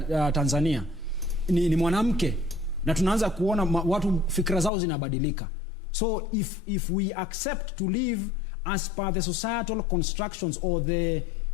Tanzania, ni mwanamke, na tunaanza kuona watu fikra zao zinabadilika. So if we accept to live as per the societal constructions or the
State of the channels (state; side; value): drops out; right; at 4.7 s